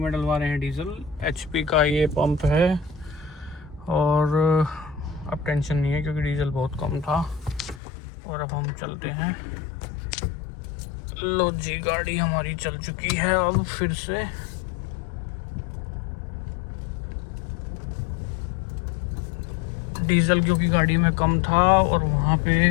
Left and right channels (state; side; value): drops out; right; at 7.8 s